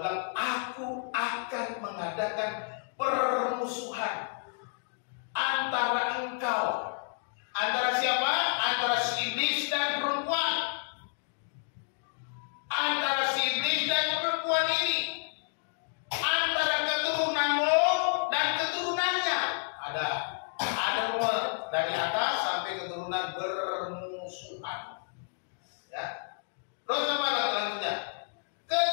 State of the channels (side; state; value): right; silent; digital silence